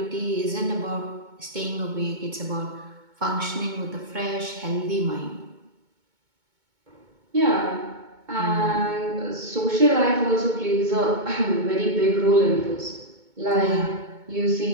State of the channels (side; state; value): left; late; 2.2 ms